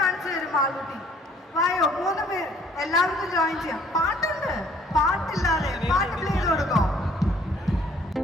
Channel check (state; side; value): normal; both; correlation 0.59